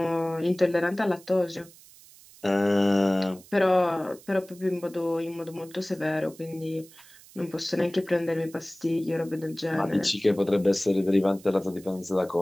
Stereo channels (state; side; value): noise; right; hiss, 23 dB below the sound